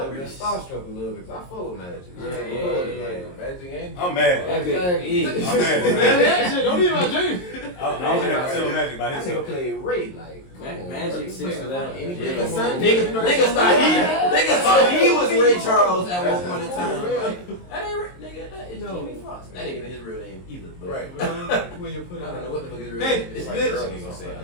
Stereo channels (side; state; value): right; late; 22 ms